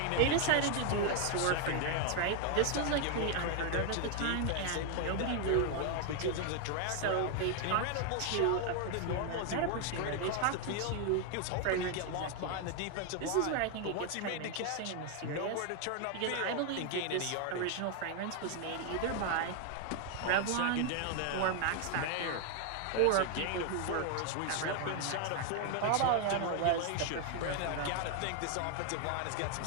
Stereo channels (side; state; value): both; different; correlation 0.00